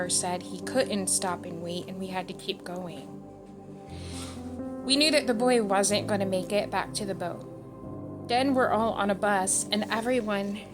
said he couldn't stop and wait and we had to keep going. We knew that the boy wasn't going to make it back to the boat. Then we're all on a bus and everyone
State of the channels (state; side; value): identical; both; correlation 1.00